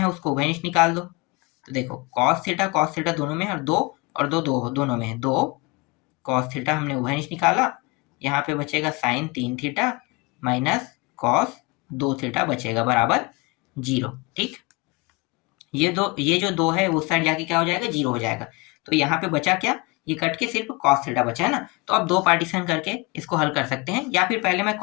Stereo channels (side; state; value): right; quieter; 26.4 dB